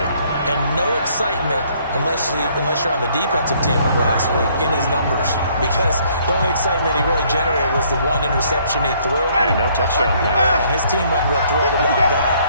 And no excitement unless you're on the defensive team of last week in his numbers, because the only excitement he really generated was the 1 interception he threw. And no touchdown pass. And his team wasn't real thrilled about that.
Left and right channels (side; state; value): both; inverted; correlation -0.64